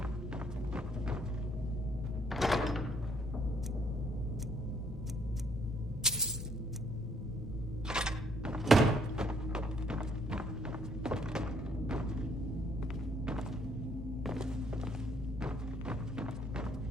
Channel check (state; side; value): normal; both; correlation 0.66